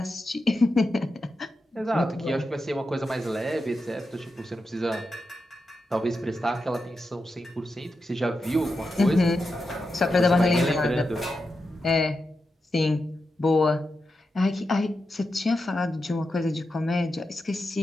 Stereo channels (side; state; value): both; normal; correlation 0.88